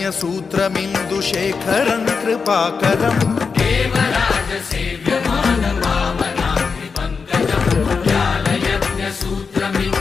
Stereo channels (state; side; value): quieter; right; 5.3 dB